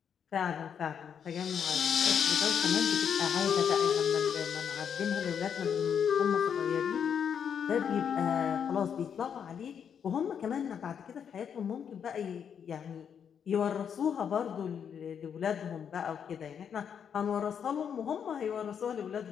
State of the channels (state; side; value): quieter; right; 7.7 dB